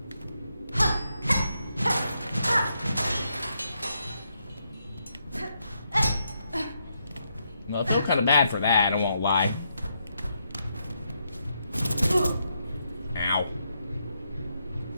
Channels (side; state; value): both; inverted; correlation -0.80